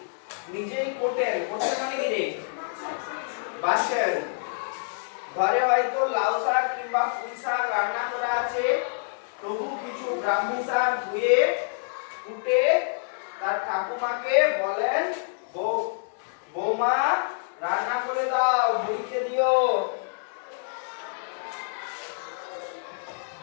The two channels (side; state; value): right; silent; digital silence